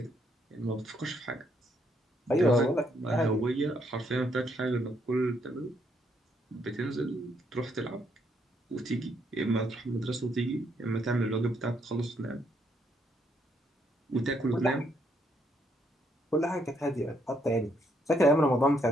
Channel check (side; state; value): both; normal; correlation 0.73